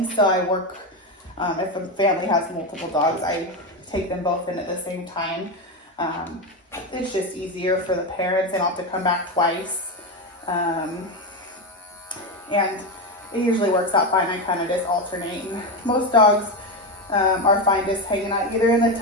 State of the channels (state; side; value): normal; both; correlation 0.13